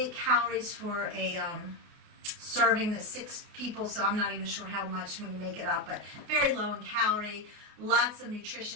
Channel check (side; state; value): left; late; 29 ms